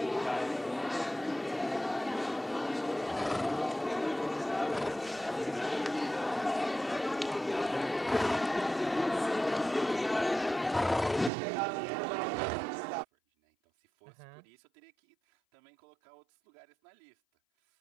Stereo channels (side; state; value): left; drops out; at 11.3 s